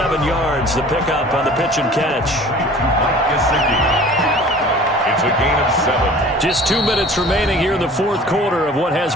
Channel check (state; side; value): normal; both; correlation 0.45